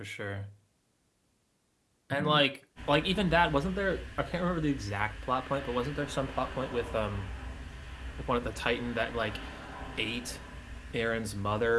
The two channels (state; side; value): identical; both; correlation 1.00